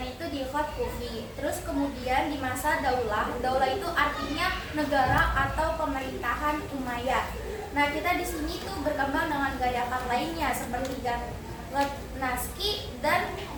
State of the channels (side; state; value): both; identical; correlation 1.00